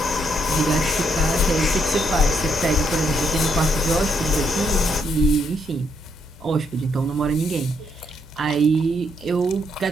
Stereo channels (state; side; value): normal; both; correlation 0.75